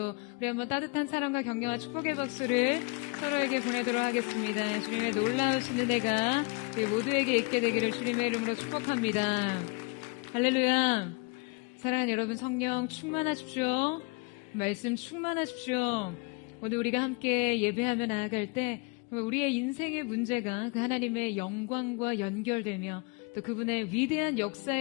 우리 한번 따뜻한 사랑과 격려와 축복의 박수를 서로에게 보내도록 하겠습니다. 주님의 놀라우신 은혜가 우리 모두에게 있게 되기를 주님의 이름으로 축복합니다. 할렐루야. 사랑하는 여러분, 성령 충만하십시오. 말씀 충만하십시오. 오늘 우리가 함께 예배하며 나아갈 때 우리의 인생의 문제가 그 하나님의 영광과 연결되며 또 그분의 위대한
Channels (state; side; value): quieter; right; 29.5 dB